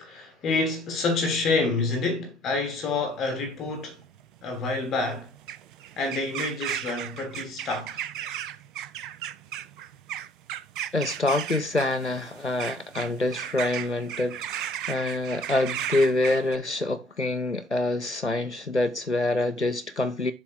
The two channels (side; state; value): both; normal; correlation 0.60